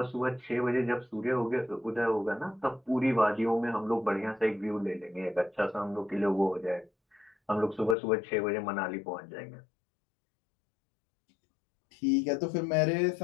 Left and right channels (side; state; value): right; drops out; at 8.0 s